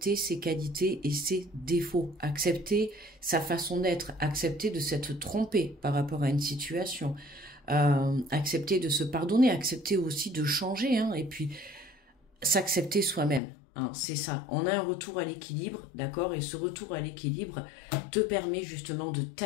ses qualités et ses défauts. Accepter sa façon d'être. Accepter de s'être trompé par rapport à une situation. Accepter de se pardonner. Accepter aussi de changer. Hein, et puis, s'accepter soi-même. Hein, c'est ça, on a un retour à l'équilibre, d'accord? Et ce retour à l'équilibre te permet justement de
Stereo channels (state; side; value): drops out; right; at 13.4 s